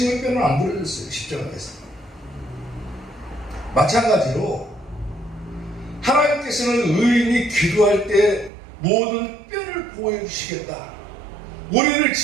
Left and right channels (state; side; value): drops out; left; at 8.5 s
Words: 뼈는 안 부러졌어요. 십자가에서. 마찬가지로 하나님께서는 의인이 기도할 때 모든 뼈를 보호해 주시겠다. 우리를